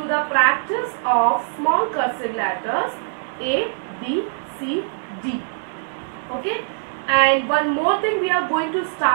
the practice of small cursive letters A, B, C, D. Okay? And one more thing we are going to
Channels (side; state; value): left; silent; digital silence